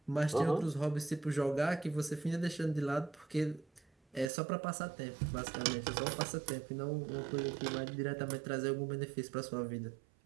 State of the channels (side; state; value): left; drops out; at 4.3 s